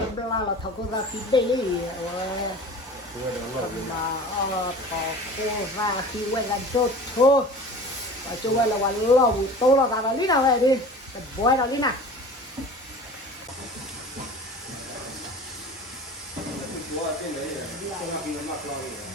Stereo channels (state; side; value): normal; both; correlation 0.39